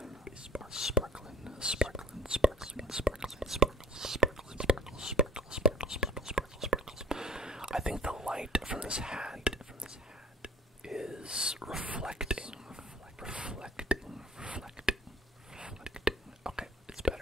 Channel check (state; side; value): normal; both; correlation 0.51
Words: I think the light from this hat is reflecting. Okay, it's